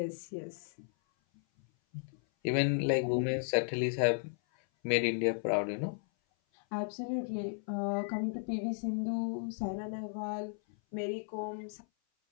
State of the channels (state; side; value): silent; right; 55 dB below the other